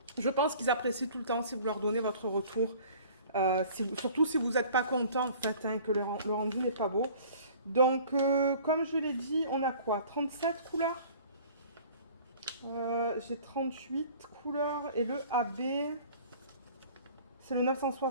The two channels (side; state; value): both; inverted; correlation -0.49